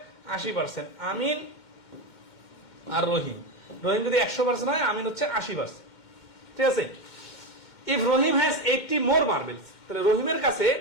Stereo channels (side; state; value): right; late; 2.1 ms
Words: 80%। আমিন আর রহিম, রহিম যদি 100% হয়, আমিন হচ্ছে 80%। ঠিক আছে। If Rahim has 80 more marbles, তাহলে রহিমের কাছে